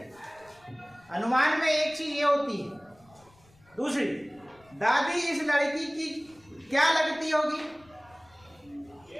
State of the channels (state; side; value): noise; left; rumble, 29 dB below the sound